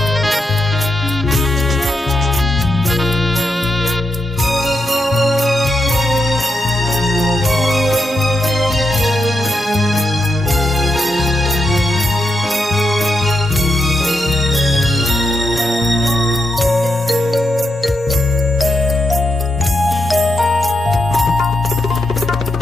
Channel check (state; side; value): normal; both; correlation 0.83